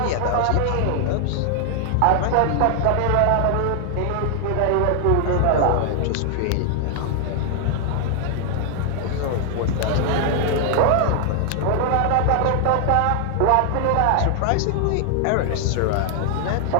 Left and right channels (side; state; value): both; different; correlation 0.00